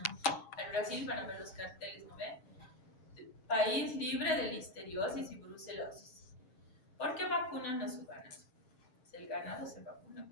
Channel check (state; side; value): late; right; 7.6 ms